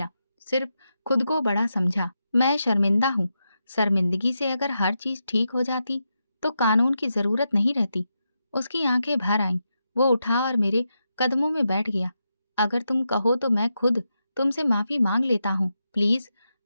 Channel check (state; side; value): inverted; both; correlation -0.86